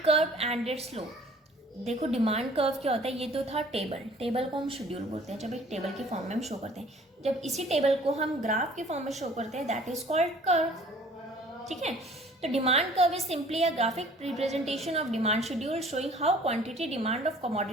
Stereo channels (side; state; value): both; normal; correlation 0.52